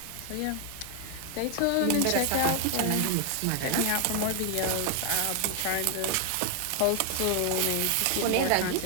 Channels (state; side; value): different; both; correlation 0.00